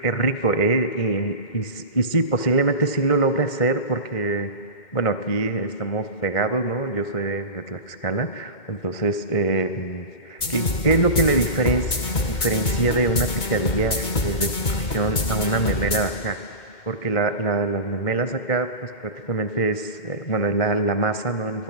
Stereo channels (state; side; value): late; right; 2.2 ms